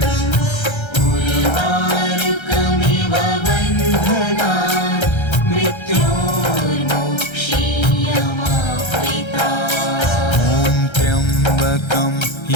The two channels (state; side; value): late; right; 1.3 ms